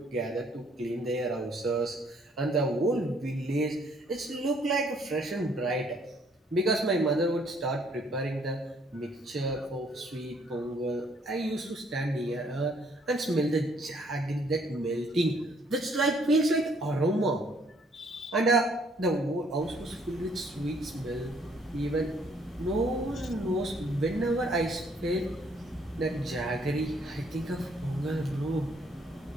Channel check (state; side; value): normal; both; correlation 0.65